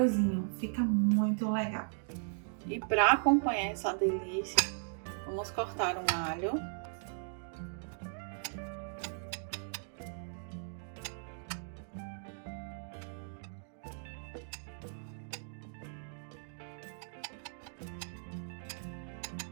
Fica muito legal. E para acompanhar essa delícia, vamos cortar um alho.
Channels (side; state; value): left; silent; digital silence